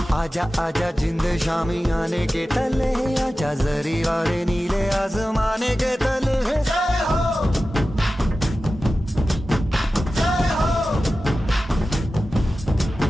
आजा आजा जिंद शामी आने के तले, आजा जरी वाले नीले आसमाने के तले। जय हो, जय हो।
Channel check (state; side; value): normal; both; correlation 0.94